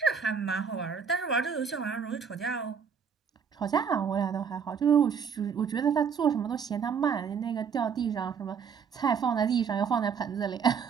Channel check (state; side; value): quieter; left; 6.6 dB